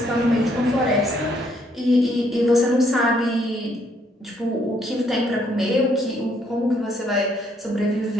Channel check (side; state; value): both; normal; correlation 0.69